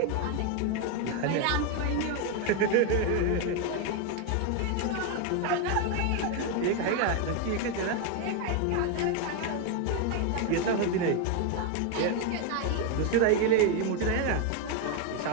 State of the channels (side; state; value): both; different; correlation 0.01